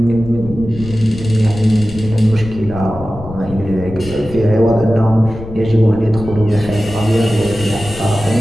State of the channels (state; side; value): noise; left; rumble, 13 dB below the sound